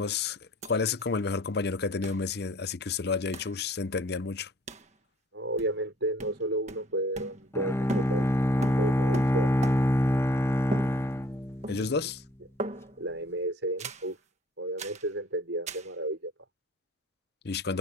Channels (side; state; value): both; normal; correlation 0.54